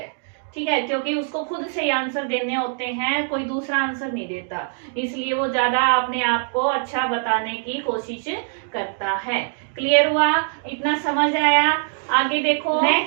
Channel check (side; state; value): left; silent; 64 dB below the other